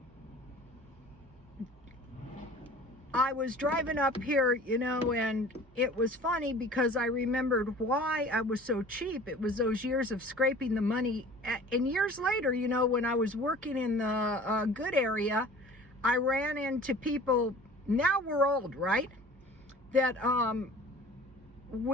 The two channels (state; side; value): normal; both; correlation 0.45